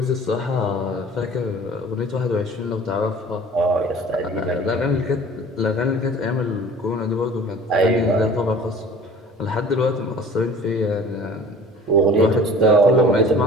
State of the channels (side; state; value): both; normal; correlation 0.45